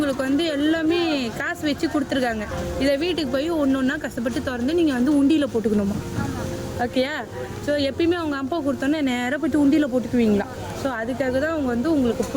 வந்து எல்லாமே காசு வச்சு கொடுத்துருக்காங்க. இதை வீட்டுக்கு போய் ஒன்று ஒன்றா கஷ்டப்பட்டு திறந்து நீங்கள் வந்து உண்டியில் போட்டுக்கணுமா? ஓகேயா? ஸோ எப்பயுமே அவங்க அப்பா கொடுத்தோன்னே நேராக போய்ட்டு உண்டியில் போட்டுக்குவீங்களா? ஸோ அதுக்காக தான் அவங்க வந்து உங்களுக்கு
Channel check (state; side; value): identical; both; correlation 1.00